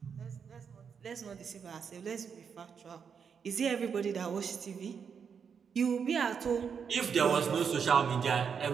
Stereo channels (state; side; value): quieter; left; 6.7 dB